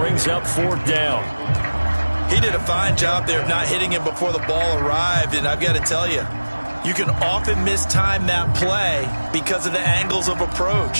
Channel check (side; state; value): both; inverted; correlation -1.00